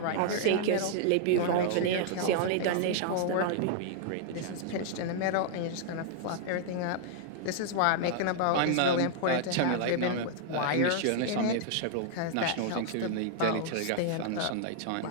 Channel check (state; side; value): different; both; correlation -0.01